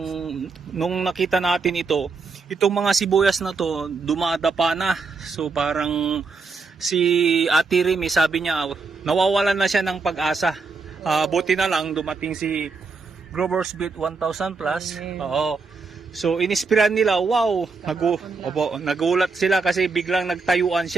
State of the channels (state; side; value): quieter; left; 4.4 dB